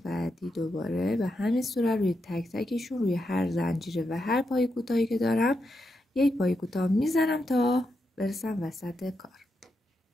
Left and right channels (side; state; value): both; normal; correlation 0.84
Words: بعدی دوباره به همین صورت روی تک تکشون روی هر زنجیره و هر پایه کوتاهی که دارم یک پایه کوتاه میزنم تا برسم وسط کار.